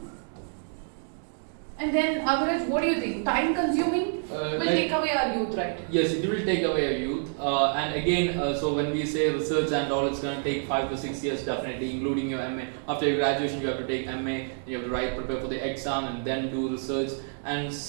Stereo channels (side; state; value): left; silent; digital silence